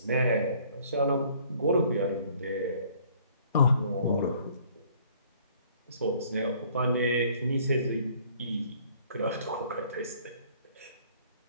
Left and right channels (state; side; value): inverted; both; correlation -0.58